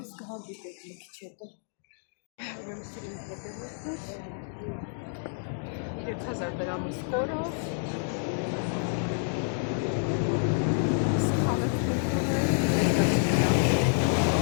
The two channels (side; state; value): right; silent; digital silence